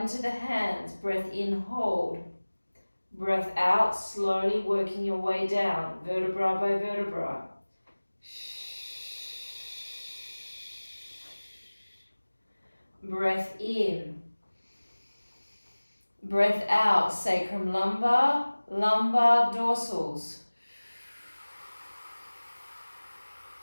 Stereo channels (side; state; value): both; inverted; correlation -1.00